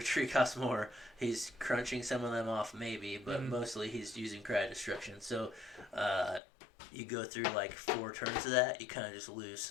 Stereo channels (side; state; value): right; drops out; at 6.4 s